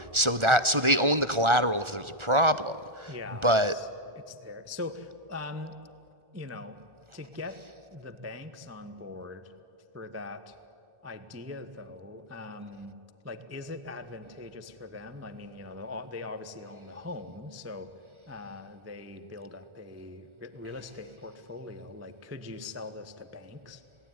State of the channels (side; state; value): left; late; 1.4 ms